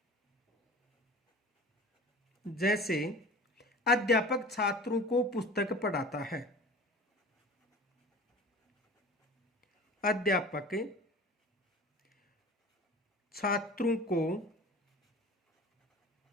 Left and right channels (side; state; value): both; normal; correlation 0.40